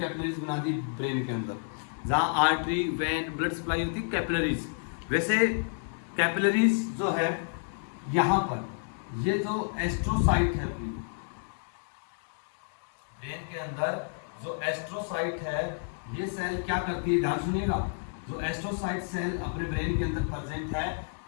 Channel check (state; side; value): silent; right; digital silence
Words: बना दी ब्रेन के अंदर, जहाँ आर्टरी, वेन, ब्लड सप्लाई होती है, कैपिलरीज। वैसे कैपिलरीज जो है यहाँ पर, ये जो एस्ट्रोसाइट है अपनी ब्रेन के अंदर, जो एस्ट्रोसाइट है, ये सेल क्या करती है, ध्यान सुनिएगा, जो एस्ट्रोसाइट सेल अपने ब्रेन के अंदर प्रेजेंट है,